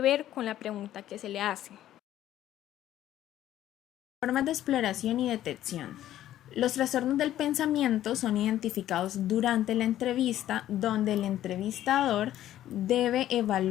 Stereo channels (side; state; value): right; quieter; 12.7 dB